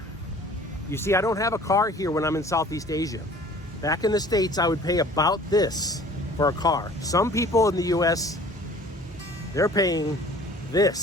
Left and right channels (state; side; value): normal; both; correlation 0.49